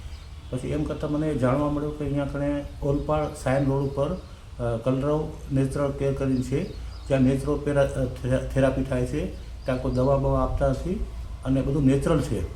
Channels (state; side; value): identical; both; correlation 1.00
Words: પછી એમ કરતાં મને જાણવા મળ્યું કે અહીંયા કણે ઓલપાડ સાયન રોડ ઉપર કલરવ નેચરલ કેર કરીને છે, જ્યાં નેચરો થેરાપી થાય છે. ત્યાં કોઈ દવા બવા આપતા નથી અને બધું નેચરલ છે.